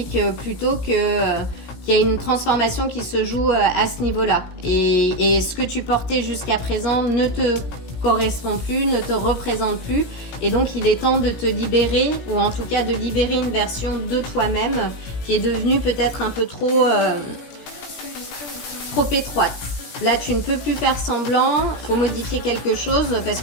plutôt qu'il y a une transformation qui se joue à ce niveau-là. Et ce que tu portais jusqu'à présent ne te correspond plus, ne te représente plus, et donc il est temps de te libérer, ou en tout cas de libérer une version de toi-même qui est devenue peut-être un peu trop étroite. Là, tu ne peux plus faire semblant, il faut modifier quelque chose parce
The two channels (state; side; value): late; right; 17 ms